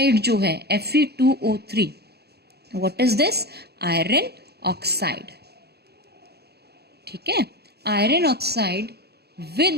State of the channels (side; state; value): left; late; 0.47 ms